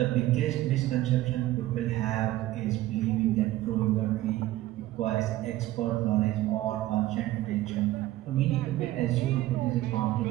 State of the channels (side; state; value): left; quieter; 15.7 dB